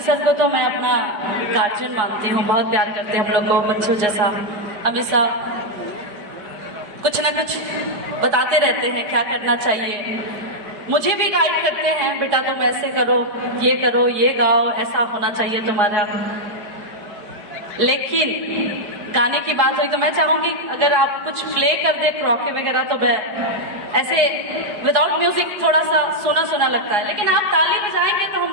सर को तो मैं अपना गार्जियन मानती हूँ, बहुत प्यार करते हैं हम लोग को बच्चों जैसा, हमेशा कुछ ना कुछ बताते रहते हैं क्या करना चाहिए। मुझे भी गाइड करते हैं, बेटा तुम ऐसे करो, ये गाओ, ऐसा होना चाहिए तुम्हारा। लेकिन गाने की बात हुई तो मैं चाहूंगी अगर आप कुछ प्ले कर दे क्रॉके वगैरह, तो मैं ऐसे विदाउट म्यूजिक थोड़ा सा सुना सुना लगता है, लेकिन आप ताली बजाएंगे तो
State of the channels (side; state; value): left; late; 4.8 ms